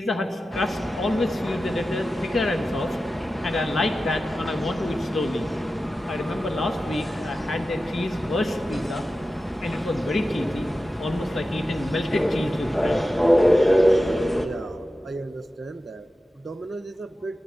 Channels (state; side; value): normal; both; correlation 0.93